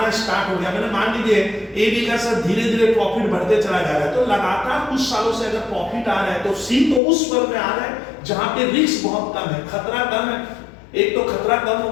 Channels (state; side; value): drops out; right; at 7.0 s